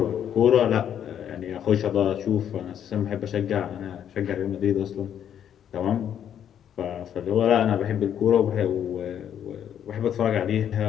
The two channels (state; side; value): quieter; right; 9.5 dB